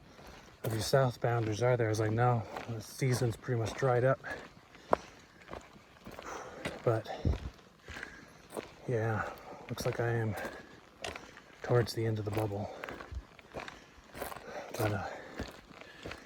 of you southbounders, are there? I was like, no, the season's pretty much dried up. But yeah, looks like I am towards the end of the bubble. But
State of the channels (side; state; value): both; identical; correlation 1.00